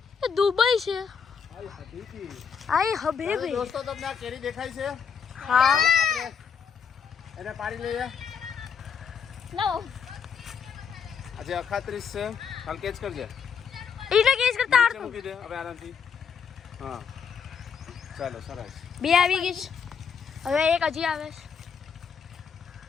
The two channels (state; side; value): quieter; right; 6.6 dB